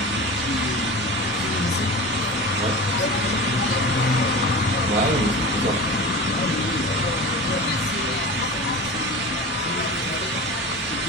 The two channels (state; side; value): normal; both; correlation 0.31